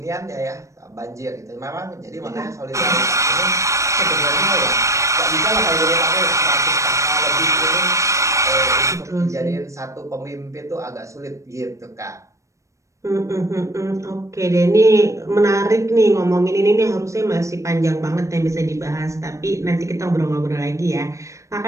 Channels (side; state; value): left; late; 0.15 ms